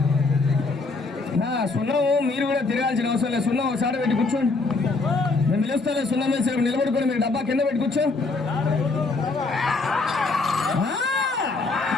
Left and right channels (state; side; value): quieter; right; 3.7 dB